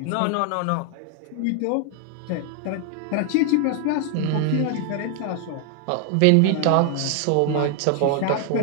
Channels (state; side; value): different; both; correlation 0.00